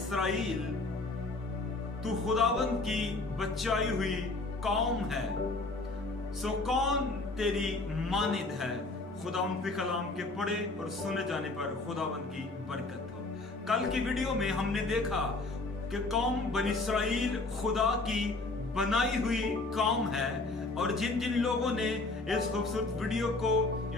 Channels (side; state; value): right; quieter; 3.3 dB